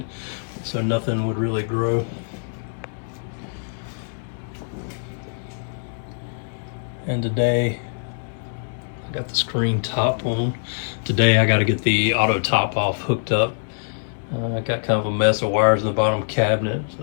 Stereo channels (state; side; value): silent; right; digital silence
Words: so nothing would really grow. And today, I got the screen top on. Today I got to get the auto top off hooked up. I got kind of a mess of wires in the bottom cabinet,